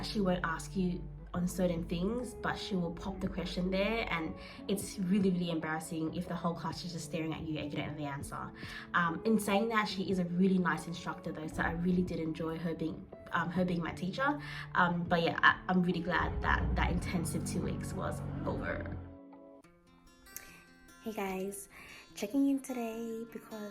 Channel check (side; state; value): both; identical; correlation 1.00